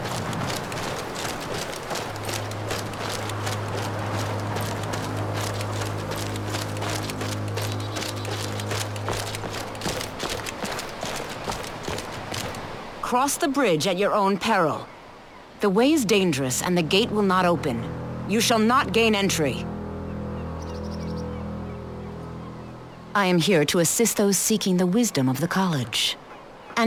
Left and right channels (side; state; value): both; identical; correlation 1.00